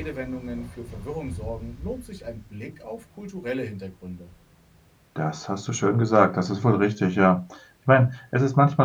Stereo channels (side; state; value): both; identical; correlation 1.00